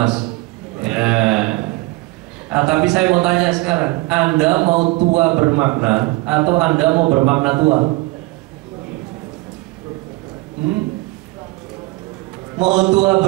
Ya. Nah, tapi saya mau tanya sekarang, Anda mau tua bermakna atau Anda mau bermakna tua? Mau tua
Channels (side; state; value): left; quieter; 22.4 dB